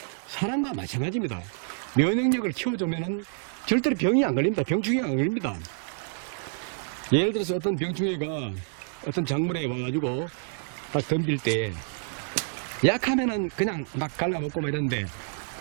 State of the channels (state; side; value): silent; left; 60 dB below the other